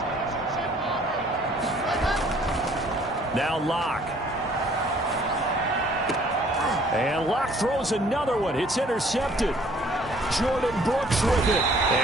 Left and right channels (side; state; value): both; normal; correlation 0.58